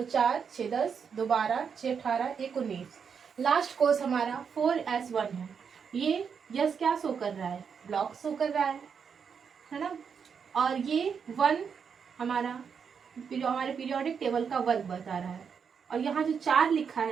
4 6 10 2 12 6 18 1 19। Last course हमारा 4s1 है। ये यस क्या शो कर रहा है, ब्लॉक शो कर रहा है ना। और ये 1 हमारा हमारे पीरियोडिक टेबल का वर्ग बता रहा है। और यहाँ जो 4 लिखा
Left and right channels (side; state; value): left; quieter; 6.6 dB